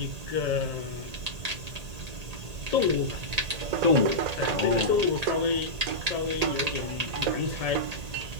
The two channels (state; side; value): late; left; 1.8 ms